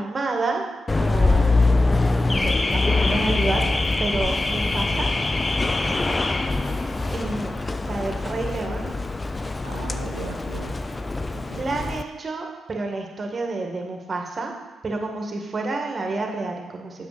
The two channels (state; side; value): normal; both; correlation 0.93